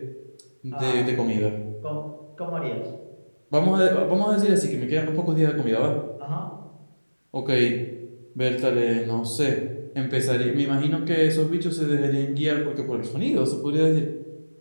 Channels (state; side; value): inverted; both; correlation -1.00